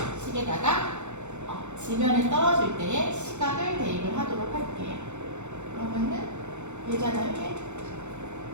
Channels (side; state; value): left; late; 0.83 ms